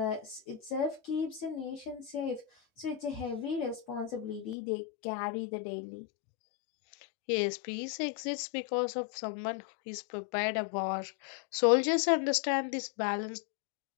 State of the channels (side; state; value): right; drops out; at 4.5 s